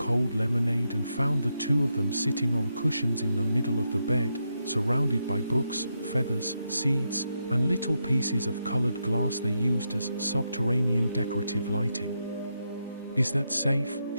lemonade and found the two of them sitting on cushions in the middle of the bed, surrounded by books, feathers, seeds, and little pieces of colored glass they used as subterranean decorative lighting. "Is that safe?"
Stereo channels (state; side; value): inverted; both; correlation -0.83